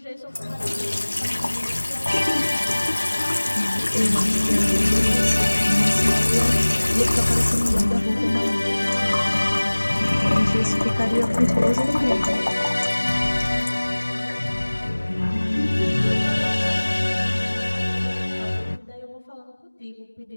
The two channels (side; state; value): both; inverted; correlation -1.00